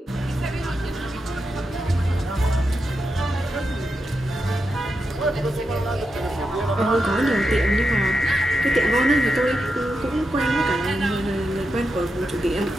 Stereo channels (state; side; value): normal; both; correlation 0.87